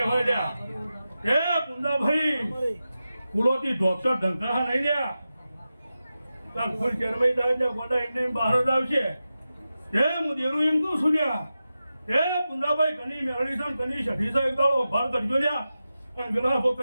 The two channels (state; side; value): inverted; both; correlation -0.92